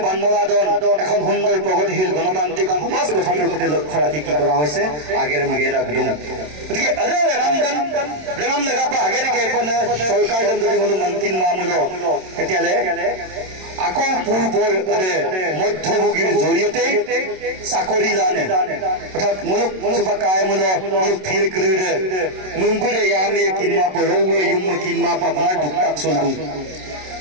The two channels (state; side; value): late; left; 27 ms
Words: বানমলাদন এখন সুন্দৰ প্ৰগতিশীল গণতান্ত্ৰিক সমাজ গঠনৰ প্ৰতি লক্ষ্য ৰাখি কি কৰা হৈছে আগেৰে মেগেৰা গুদুম গতিকে আৰে ৰেনাম লগাপা আগেৰে কেপন চৰকাৰ যদি হলো মন্ত্ৰী মামুলো তেতিয়ালে আকৌ পূৰ্বৰ মধ্যভোগীৰ জৰিয়তে চাকৰি লানে অৰ্থাৎ মুলুক চুপাকায় মুলুক ফিল ক্লিৰে মুম্বুৰে ইয়ামে কিনমা পৰৱে ইউম কিনমা আপোনাৰ দুক্তাক চলদু